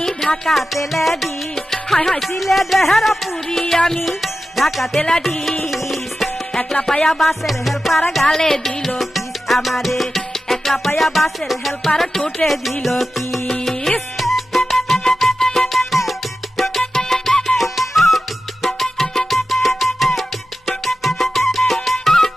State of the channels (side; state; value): both; normal; correlation 0.93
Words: ঢাকাতে লেডিস, হায় হায় সিলেটের পুরি আমি ঢাকাতে লেডিস, একলা পায়া বাসের হেল্পার গালে দিল কিস আমারে, একলা পায়া বাসের হেল্পার ঠুটে দিল কিস।